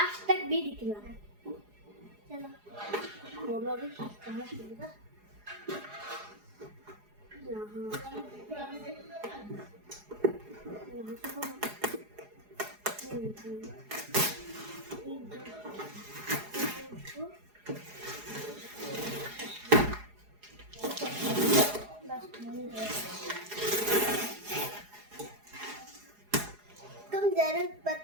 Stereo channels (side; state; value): left; late; 4.8 ms